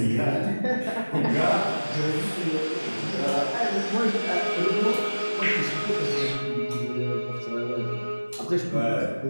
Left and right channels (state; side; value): inverted; both; correlation -1.00